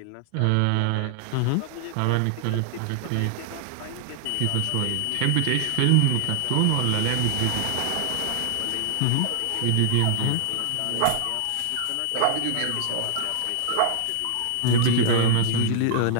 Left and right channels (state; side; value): different; both; correlation 0.00